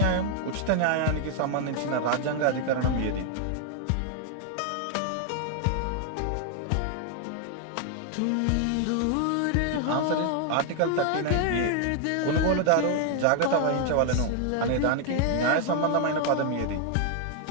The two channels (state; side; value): different; both; correlation 0.00